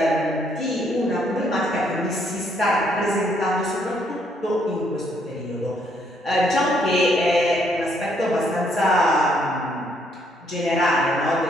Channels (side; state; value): both; normal; correlation 0.70